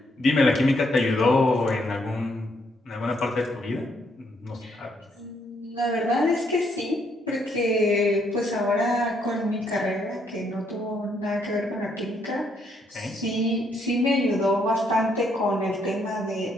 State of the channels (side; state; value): both; normal; correlation 0.73